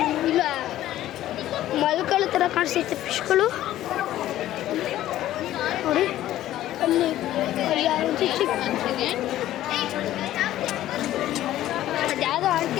ಇಲ್ಲ, ಮಲ್ಕಳ ಥರ ಕಾಣಿಸ್ತೈತೆ ಫಿಶ್ಗಳು ನೋಡಿ. ಅಲ್ಲಿ ಅದ್ಯಾವುದೋ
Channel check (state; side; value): quieter; right; 13.6 dB